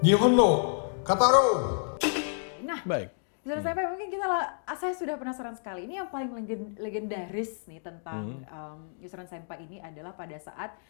Nihonno Kataro. Nah, Baik. menurut saya mungkin saya sudah penasaran sekali. Ini yang paling legendaris nih tentang Yusran Senpai ini adalah pada saat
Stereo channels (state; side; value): silent; right; digital silence